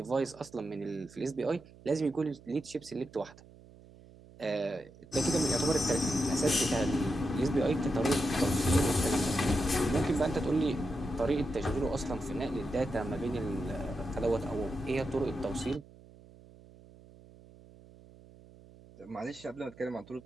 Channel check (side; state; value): right; noise; hum, 22 dB below the sound